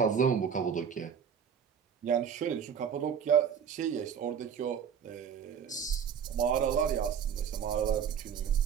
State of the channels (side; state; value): left; quieter; 7.7 dB